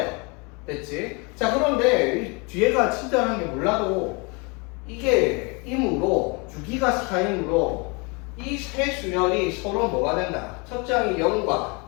됐지? 자, 그런데 이 뒤에가 친절한 게 몰라도 이게 임으로 주기가 4이므로 이 세 수열이 서로 뭐가 된다? 첫째 항이 0과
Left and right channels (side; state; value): right; quieter; 30.5 dB